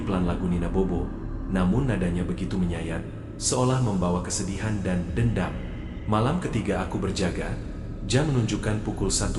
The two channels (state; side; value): identical; both; correlation 1.00